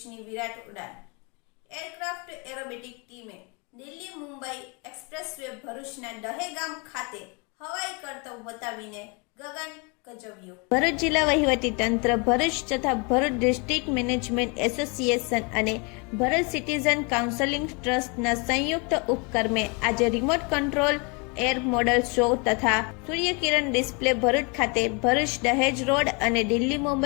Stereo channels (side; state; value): right; quieter; 31.9 dB